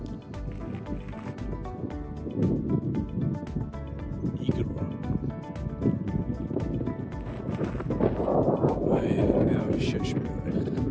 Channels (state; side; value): identical; both; correlation 1.00